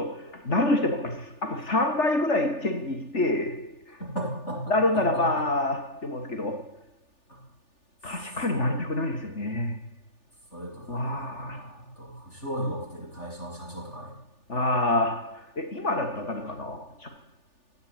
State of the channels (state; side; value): late; right; 3.4 ms